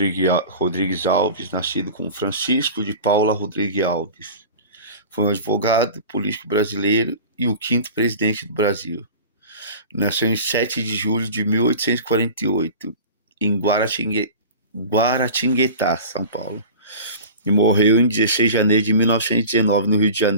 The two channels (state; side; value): inverted; both; correlation -0.37